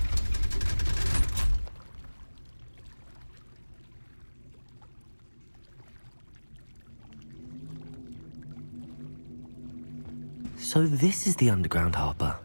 So this is the underground harbour.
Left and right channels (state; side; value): inverted; both; correlation -1.00